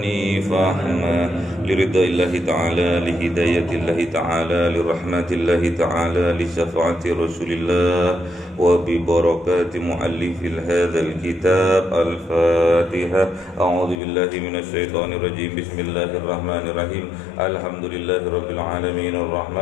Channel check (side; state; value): right; drops out; at 14.0 s